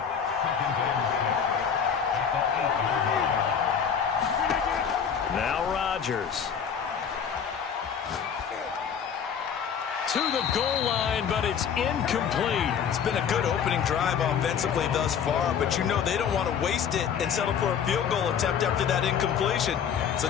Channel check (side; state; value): right; quieter; 7.5 dB